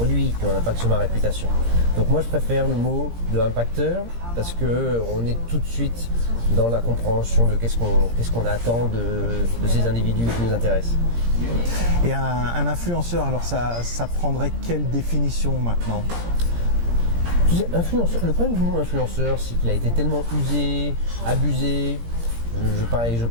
qui ont un impact sur ma réputation. Donc moi je préfère le mot de impacteur parce qu'on est tout de suite dans la compréhension de qu'est-ce qu'on attend de ces individus qui nous intéressent. Et un influenceur, alors ça prendrait quelle définition maintenant ? Le problème du mot influenceur, c'est qu'il a été tellement usé, abusé. Je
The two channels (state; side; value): late; left; 17 ms